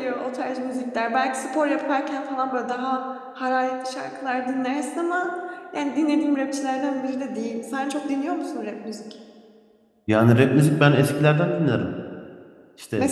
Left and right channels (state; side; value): identical; both; correlation 1.00